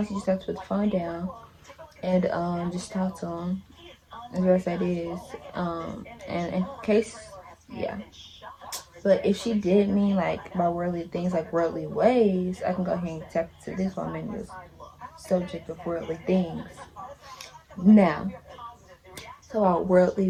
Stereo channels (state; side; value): identical; both; correlation 1.00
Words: you just have to put the phone down and just talk to him as best that is. And in case, yeah. But if she did mean like by worldly things, like worldly ways, I can go ahead and tap into this woman, this subject of worldly things. Now, so about